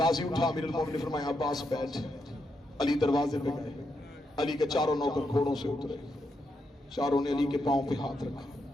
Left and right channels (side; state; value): both; normal; correlation 0.82